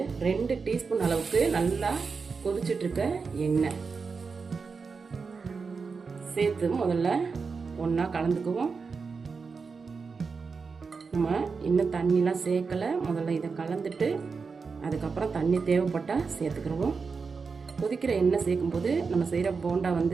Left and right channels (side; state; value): left; quieter; 5.0 dB